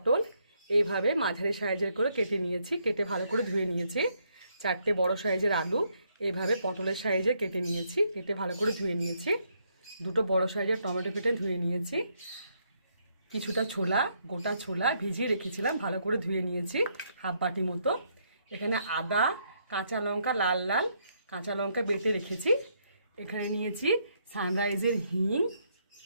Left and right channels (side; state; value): both; inverted; correlation -0.74